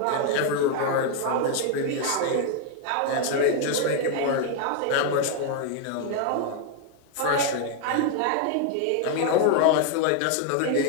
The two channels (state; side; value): different; both; correlation 0.00